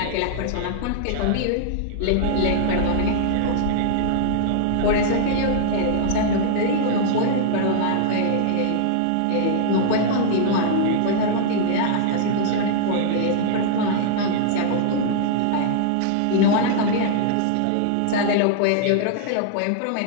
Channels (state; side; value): different; both; correlation -0.01